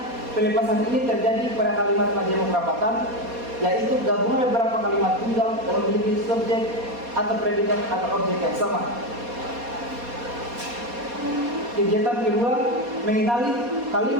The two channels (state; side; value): late; left; 4.2 ms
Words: pelepasan ini terjadi pada kalimat majemuk rapatan, yaitu gabungan beberapa kalimat tunggal yang memiliki subjek atau predikat atau objek yang sama. Kegiatan kedua, mengenali